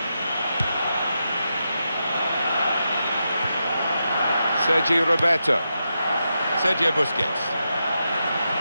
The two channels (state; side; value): inverted; both; correlation -0.87